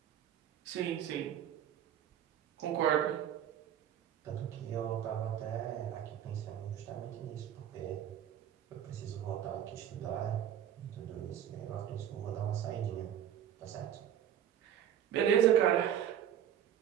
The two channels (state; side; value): quieter; left; 10.1 dB